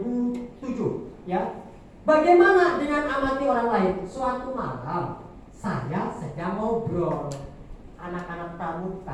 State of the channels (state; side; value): identical; both; correlation 1.00